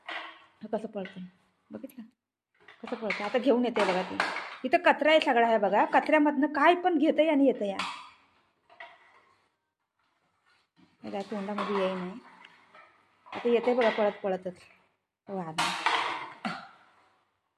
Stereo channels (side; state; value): both; identical; correlation 1.00